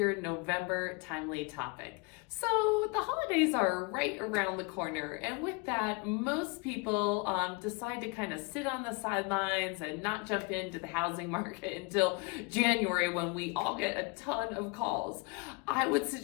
November timely topic. So the holidays are right around the corner, and with that, most people decide to kind of sit on the sidelines and not jump into the housing market until January when we all get a ton of calls. I would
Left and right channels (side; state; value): right; quieter; 29.6 dB